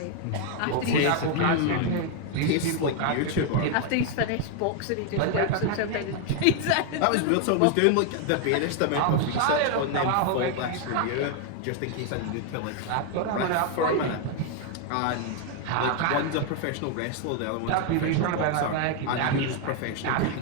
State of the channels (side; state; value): both; different; correlation 0.00